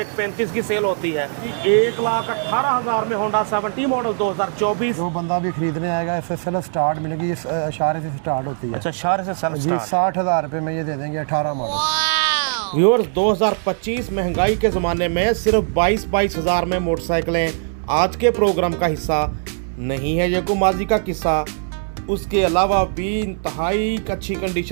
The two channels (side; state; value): left; silent; digital silence